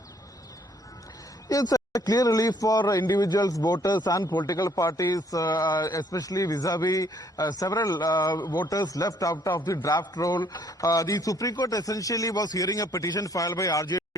It's a clear relief for individuals, voters and political parties, especially vis-a-vis several voters left out of the draft roll. The Supreme Court essentially was hearing a petition filed by RJD,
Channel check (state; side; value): normal; both; correlation 0.64